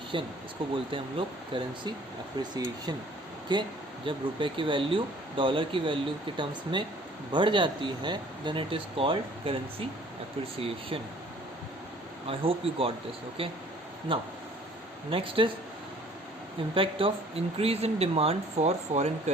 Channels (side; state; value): both; normal; correlation 0.54